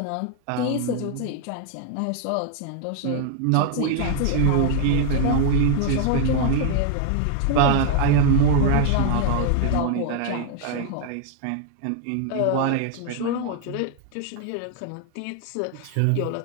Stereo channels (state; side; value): different; both; correlation 0.00